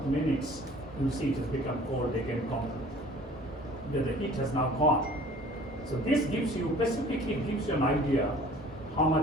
minutes, you see it has become cold again completely. The heat has now gone. So this gives you, specifically gives you an idea how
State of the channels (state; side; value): normal; both; correlation 0.49